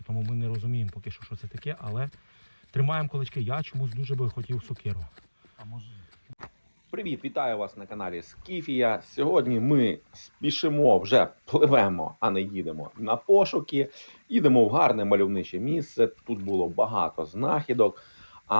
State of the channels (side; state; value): both; inverted; correlation -1.00